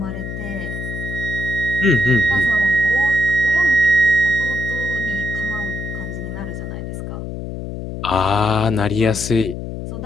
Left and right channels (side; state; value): left; noise; hum, 7 dB below the sound